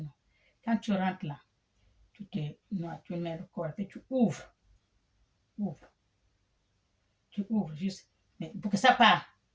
non? Quand tu rentres là, tu mets le corps, et tu ouvres. Tu ouvres juste. Mais pour que ça parte,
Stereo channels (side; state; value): both; identical; correlation 1.00